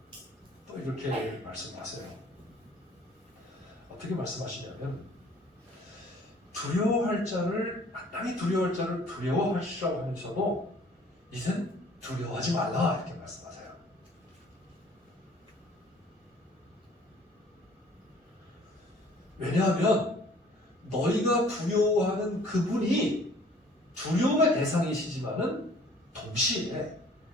또 이렇게 말씀하세요. 어떻게 말씀하시냐면 두려워할 자를 마땅히 두려워할 자를 두려워하시라고 하면서도 이젠 두려워하지 말라 이렇게 말씀하세요. 왜냐하면 너희가 두려워하는 그분이 두려움의 대상이시지만은 동시에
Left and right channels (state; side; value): normal; both; correlation 0.55